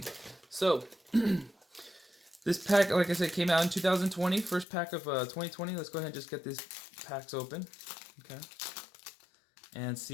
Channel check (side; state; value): right; drops out; at 4.7 s